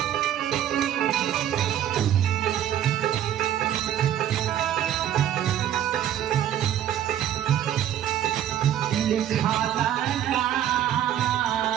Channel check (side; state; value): left; quieter; 11.0 dB